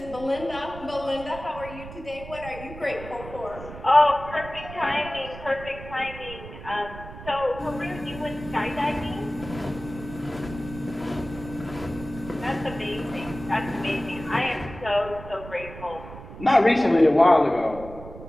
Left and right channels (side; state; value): right; noise; rumble, 14 dB below the sound